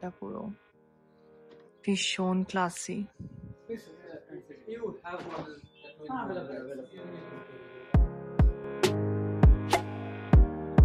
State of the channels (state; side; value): identical; both; correlation 1.00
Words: পুরো ভীষণ ক্লাসি।